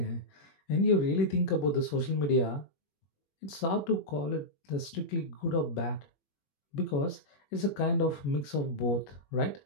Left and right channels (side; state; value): right; late; 21 ms